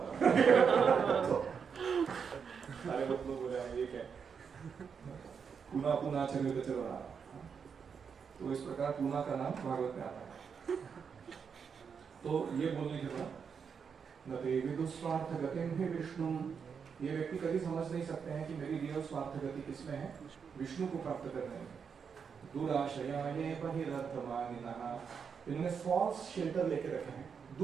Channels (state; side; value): quieter; left; 6.4 dB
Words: सारे लोग बोले ये क्या, पुनः पुनः चरवित चरवणाना। तो इस प्रकार पुनः का नाम भागवत में आता है। तो ये बोलने के बाद न ते विदुस्वार्थ गतिम ही विष्णु, ये व्यक्ति कभी समझ नहीं सकते हैं कि मेरी रियल स्वार्थ गति किसमें है, विष्णु को प्राप्त करने में। दुराशया ये बहिरर्थमानिनः, इन्होंने फॉल्स शेल्टर लेके रखे हैं।